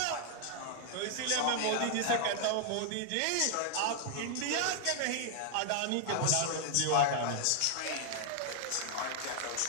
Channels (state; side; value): different; both; correlation 0.00